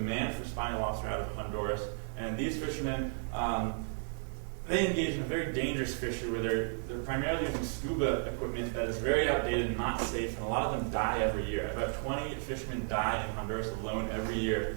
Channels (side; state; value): left; silent; 55 dB below the other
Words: for spiny lobster out of Honduras, and these fishermen they engage in a very dangerous fishery where they're primarily using scuba equipment that is very outdated and not safe, and a lot of them die every year. About 20 fishermen die in Honduras alone every year